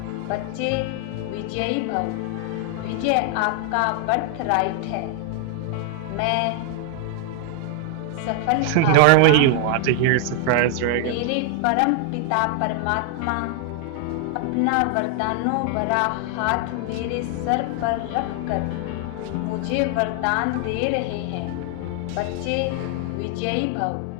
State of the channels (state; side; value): different; both; correlation 0.00